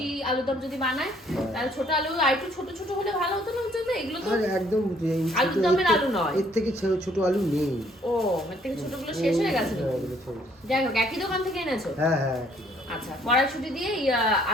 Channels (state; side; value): normal; both; correlation 0.63